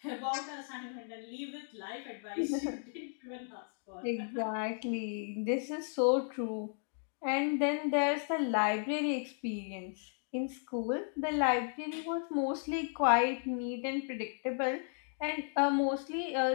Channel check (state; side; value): silent; right; 55 dB below the other